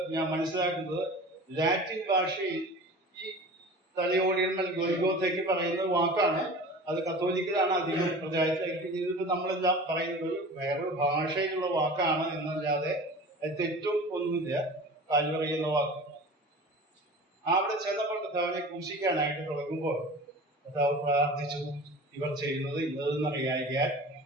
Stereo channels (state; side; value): normal; both; correlation 0.38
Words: ഞാൻ മനസ്സിലാക്കുന്നത് ലാറ്റിൻ ഭാഷയിൽ ഈ തലയോടിയിടം ഗൊൽഗോഥയ്ക്ക് പറയുന്ന വാക്കാണ്. അത് കത്തോലിക്കലാണ് അധികം പ്രചാരത്തിലേക്ക്. ഇതിട്ട് നമ്മളെല്ലാം പറയുന്നത് വേറൊരു ഭാഷയിലുള്ള വാക്കാണ് എന്നല്ലാതെ അത് തെറ്റും ഒന്നുമില്ല. കാൽവറി എന്ന വാക്ക് അവിടെ ചെന്നപ്പോൾ കർത്താവിനെ ക്രൂശിക്കാനായിട്ട് തുടങ്ങുമ്പോൾ കർത്താവ് പ്രാർത്ഥിച്ചു, ഇവർ ചെയ്യുന്നത് ഇന്നതെന്നറിയാൻ